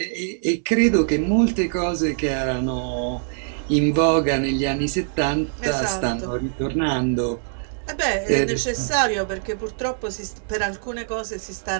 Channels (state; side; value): silent; left; 62 dB below the other